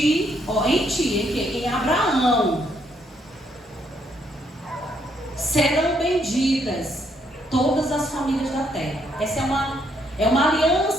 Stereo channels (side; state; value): both; normal; correlation 0.72